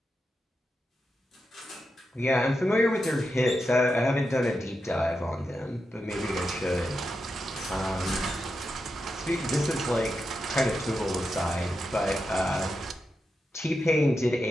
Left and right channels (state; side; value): normal; both; correlation 0.88